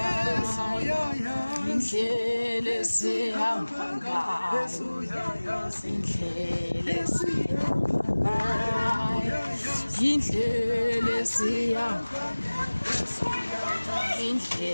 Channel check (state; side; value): inverted; both; correlation -1.00